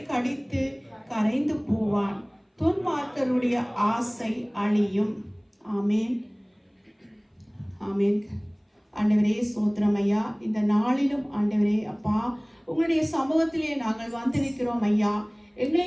கடித்து கரைந்து போவான். துன்மார்க்கருடைய ஆசை அழியும். ஆமேன். ஆமேன். ஆண்டவரே ஸ்தோத்திரம் ஐயா. இந்த நாளிலும் ஆண்டவரே அப்பா உங்களுடைய சமூகத்திலே நாங்கள் வந்திருக்கிறோம் ஐயா. எங்களை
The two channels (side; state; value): both; identical; correlation 1.00